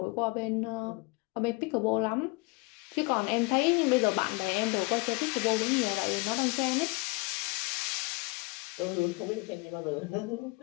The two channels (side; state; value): right; quieter; 28.1 dB